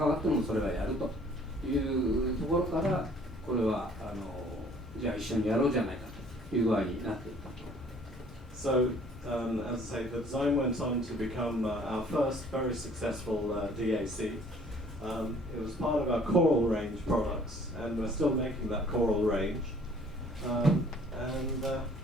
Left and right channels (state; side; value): normal; both; correlation 0.56